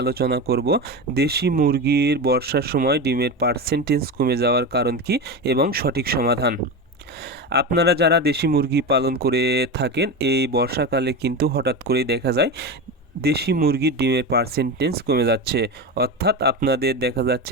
করব দেশি মুরগির বর্ষার সময় ডিমের পার্সেন্টেজ কমে যাওয়ার কারণ কি এবং সঠিক সমাধান। আপনারা যারা দেশি মুরগি পালন করে থাকেন, এই বর্ষাকালে কিন্তু হঠাৎ করেই দেখা যায় দেশি মুরগির ডিমের পার্সেন্টেজ কমে যাচ্ছে। অর্থাৎ আপনাদের দেখা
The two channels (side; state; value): both; normal; correlation 0.21